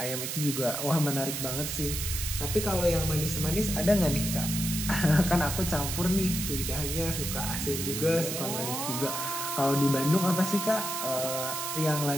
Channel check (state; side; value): noise; right; hiss, 3 dB below the sound